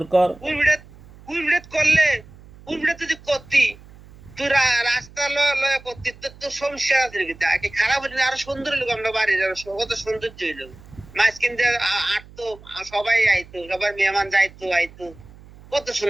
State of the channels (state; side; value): noise; right; hum, 21 dB below the sound